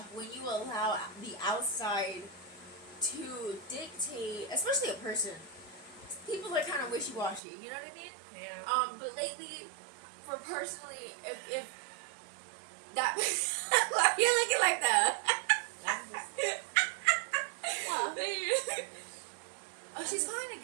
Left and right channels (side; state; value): left; drops out; at 7.4 s